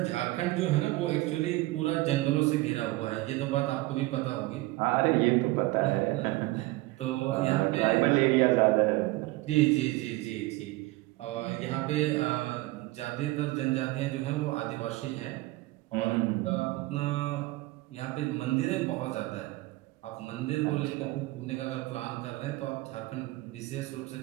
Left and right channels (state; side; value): quieter; left; 19.9 dB